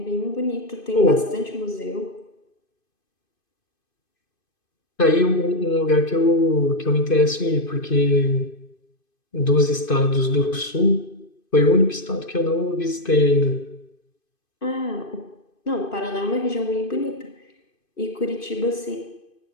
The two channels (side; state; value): right; late; 2.5 ms